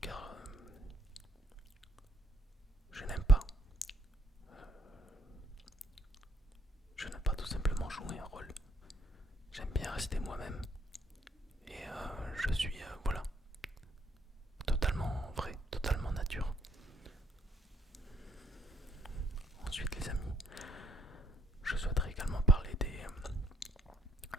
Car je n'aime pas. Je n'aime pas tout simplement jouer un rôle. J'aime bien rester moi-même. Et je suis, voilà, totalement vrai, totalement nature. Ensuite les amis, je souhaiterais également parler des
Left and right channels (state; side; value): normal; both; correlation 0.70